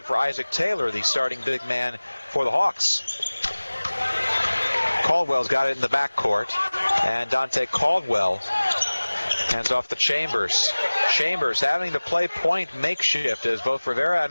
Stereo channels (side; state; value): both; inverted; correlation -1.00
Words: for Isaac Taylor, the starting big man for the Hawks. Caldwell's got it in the backcourt, and Dante Caldwell hands off to Chambers. Chambers having to play point makeshift as both Rivera